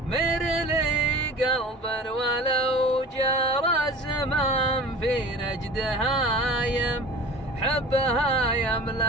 مر لي قلبا ولو جرى الزمان في نجد هايم، حبها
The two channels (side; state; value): both; normal; correlation 0.39